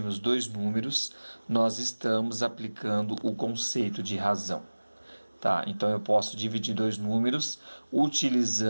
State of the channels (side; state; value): both; inverted; correlation -1.00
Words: dois números, nós estamos aplicando o conceito de razão. Tá, então eu posso dividir dois números